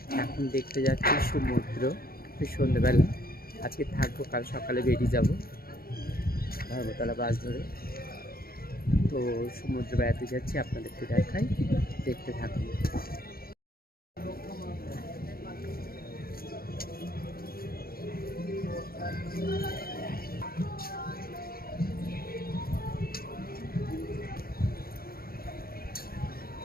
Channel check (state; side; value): late; right; 0.44 ms